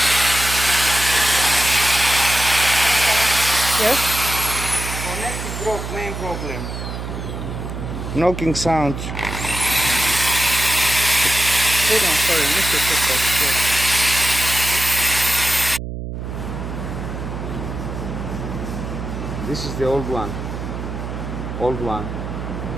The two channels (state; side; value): noise; right; hum, 7 dB below the sound